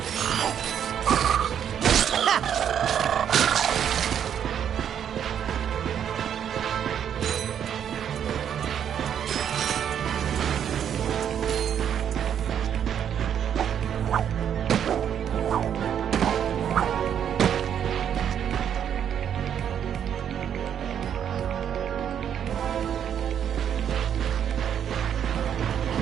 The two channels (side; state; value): left; quieter; 8.9 dB